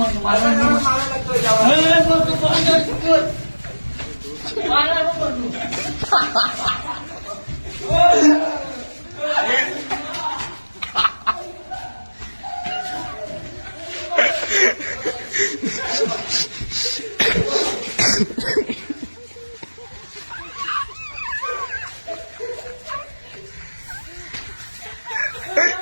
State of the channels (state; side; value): inverted; both; correlation -1.00